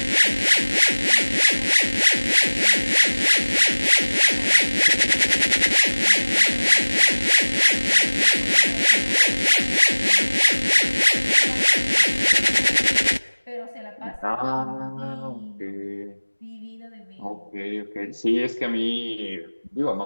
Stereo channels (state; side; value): inverted; both; correlation -1.00